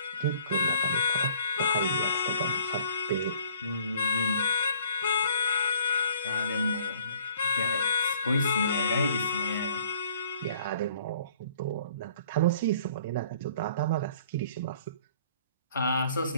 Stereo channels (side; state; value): both; inverted; correlation -0.57